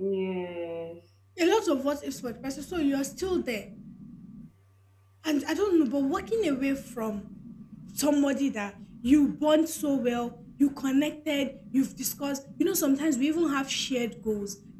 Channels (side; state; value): both; identical; correlation 1.00